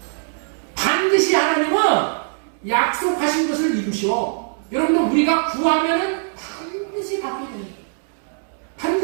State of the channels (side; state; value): left; silent; digital silence